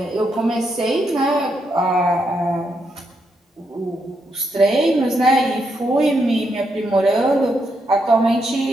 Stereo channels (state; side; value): normal; both; correlation 0.80